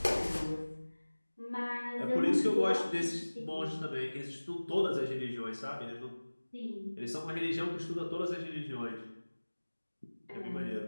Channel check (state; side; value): inverted; both; correlation -1.00